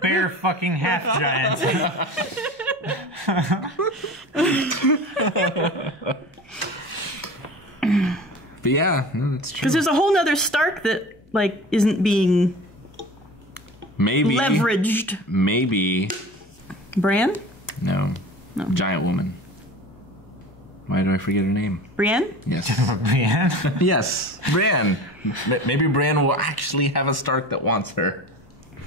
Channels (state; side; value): normal; both; correlation 0.37